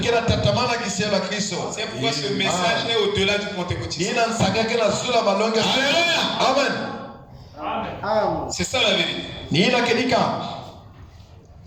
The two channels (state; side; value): identical; both; correlation 1.00